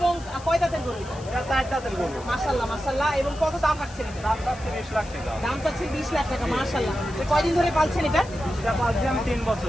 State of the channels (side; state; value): left; noise; hiss, 20 dB below the sound